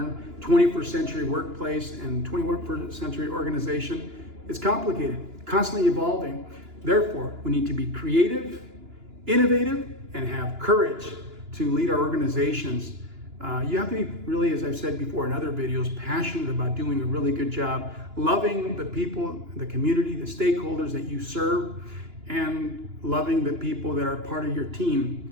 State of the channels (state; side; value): late; left; 2.9 ms